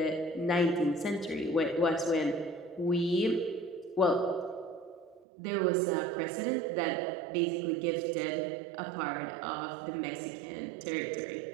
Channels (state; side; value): drops out; left; at 5.2 s